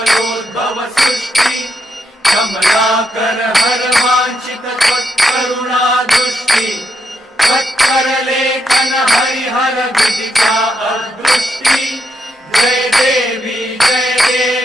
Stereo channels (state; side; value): normal; both; correlation 0.80